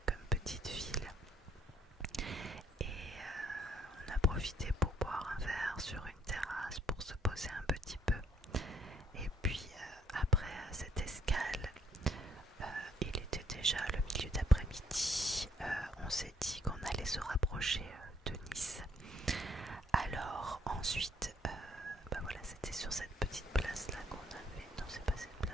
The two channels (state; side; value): normal; both; correlation 0.67